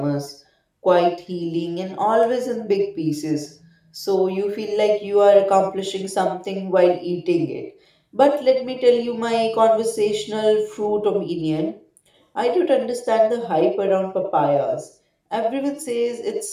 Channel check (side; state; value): both; identical; correlation 1.00